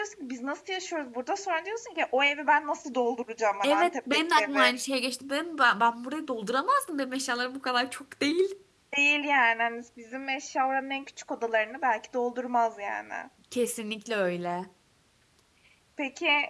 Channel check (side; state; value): both; identical; correlation 1.00